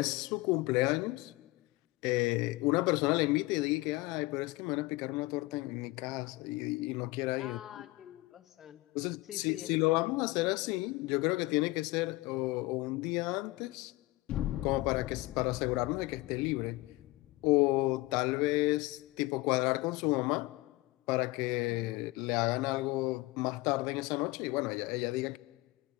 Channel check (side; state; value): right; quieter; 20.9 dB